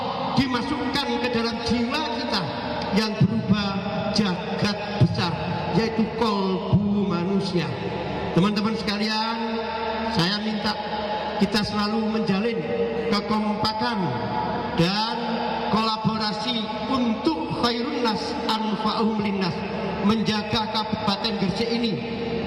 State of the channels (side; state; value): both; identical; correlation 1.00